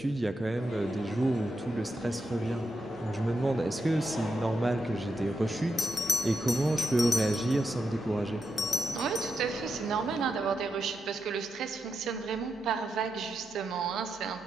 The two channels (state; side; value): normal; both; correlation 0.86